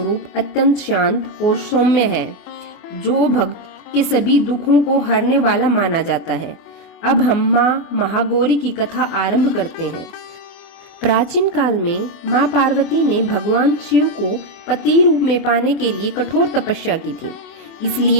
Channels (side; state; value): right; late; 24 ms